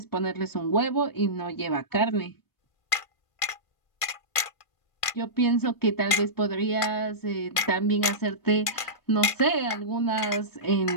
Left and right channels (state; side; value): late; right; 1.5 ms